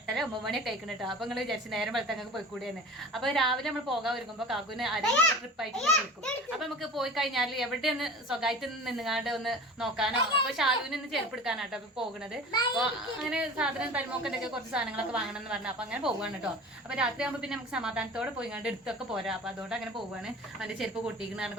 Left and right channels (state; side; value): normal; both; correlation 0.37